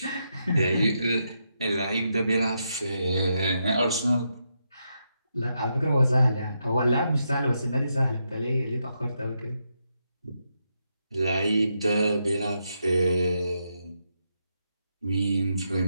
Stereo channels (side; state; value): both; inverted; correlation -0.82